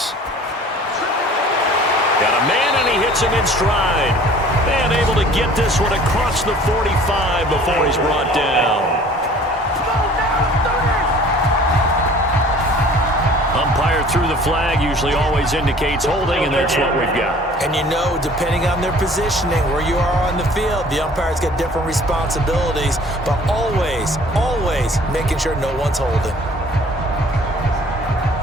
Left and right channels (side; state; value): both; normal; correlation 0.50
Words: Got a man, and he hits him in stride. And able to get this one across the 45 before he's brought down. Umpire threw the flag, usually always indicates holding, and that's what we've got. And you know, depending on their positioning, where you are on the field, the umpire's got different responsibilities, but always making sure no one's holding.